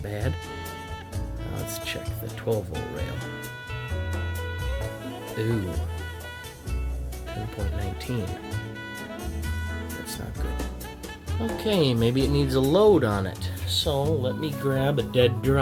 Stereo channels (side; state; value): both; identical; correlation 1.00